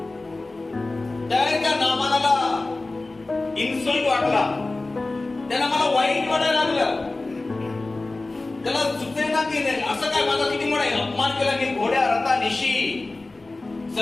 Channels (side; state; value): right; quieter; 3.2 dB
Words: त्या नामानाला इन्सल्ट वाटला, त्याला मला वाईट वाटायला लागलं. त्याला सुचेना की असं काय माझा किती मोठा अपमान केला की घोड्या रथानिशी